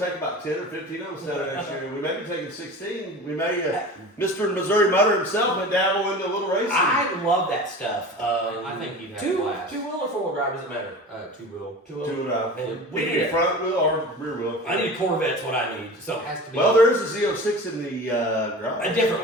take about 10 or 15 of them down next year. We may be taking 16. We may. Mr. Missouri Mutter himself may dabble into a little racing. I love that stuff. I think you'd have a blast. Two-wheel or four-wheel drive, doesn't matter. Two-wheel. Two-wheel. Do it out. And We we need need a front wheel or rear wheel. I need a Corvette's what I need. So Has to be. Well, there is a Z06 in the garage. a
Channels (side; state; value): both; normal; correlation 0.35